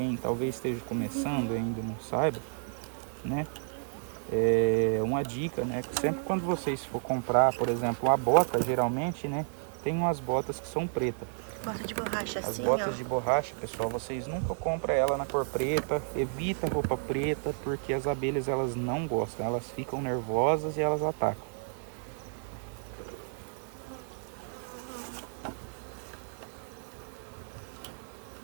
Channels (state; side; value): silent; left; digital silence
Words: talvez esteja começando e ainda não saiba, né? É uma dica, né? Que sempre quando vocês for comprar, por exemplo, uma bota, geralmente, né? Tem umas botas que são pretas. Bota de borracha As assim, botas ó. de borracha, pessoal, vocês nunca compram ela na cor preta. Evita roupa preta, porque as abelhas elas não gostam. Elas ficam nervosas e elas atacam.